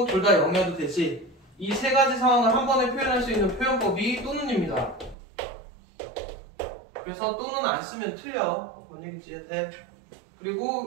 둘 다 0이어도 되지. 이 세 가지 상황을 한 번에 표현할 수 있는 표현법이 또는입니다. 그래서 또는 안 쓰면 틀려. 뭔 얘기인지 이해돼?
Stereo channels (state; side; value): drops out; left; at 5.2 s